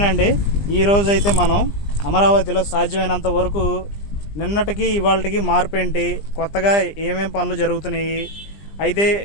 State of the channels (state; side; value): late; right; 20 ms